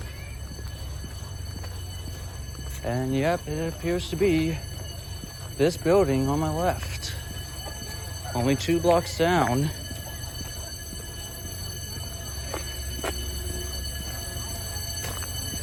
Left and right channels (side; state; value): both; identical; correlation 1.00